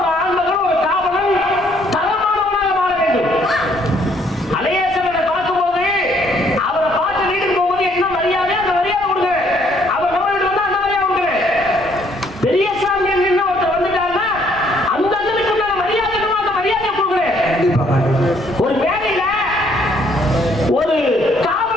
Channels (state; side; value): normal; both; correlation 0.66